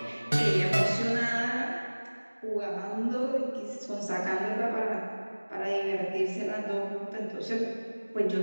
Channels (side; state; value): both; inverted; correlation -1.00